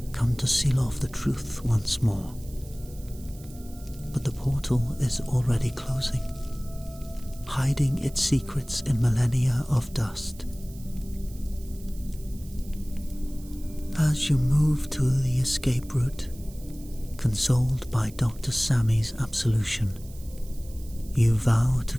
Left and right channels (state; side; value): noise; right; hiss, 22 dB below the sound